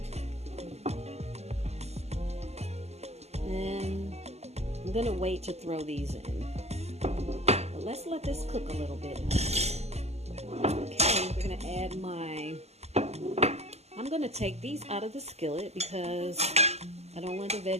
And I'm gonna wait to throw these in. But let's let this cook a little bit. Okay, we're gonna add I'm gonna take these out of the skillet because I don't want the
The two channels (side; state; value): left; late; 0.31 ms